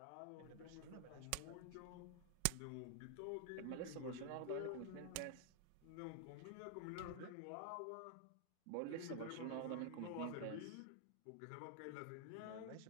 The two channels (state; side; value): different; both; correlation 0.00